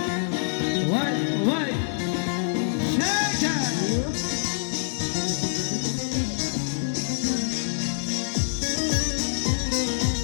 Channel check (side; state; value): right; silent; digital silence